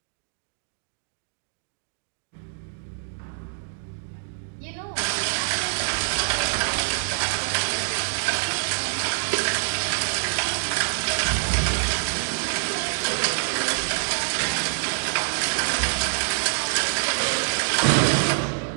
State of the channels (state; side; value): silent; left; digital silence